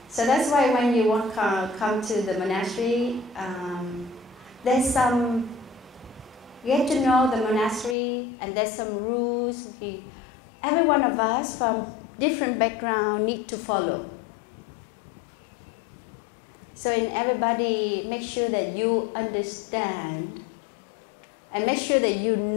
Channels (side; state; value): right; drops out; at 8.0 s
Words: that's why when you come to the monastery, there's some, you get to know the monastery, and there's some rules. Every one of us from different background need to follow. So in everybody, make sure that you understand and make sure that you